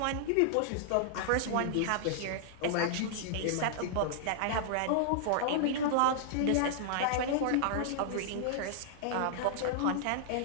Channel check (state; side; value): different; both; correlation -0.01